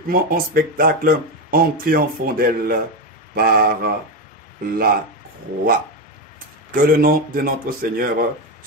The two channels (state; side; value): normal; both; correlation 0.12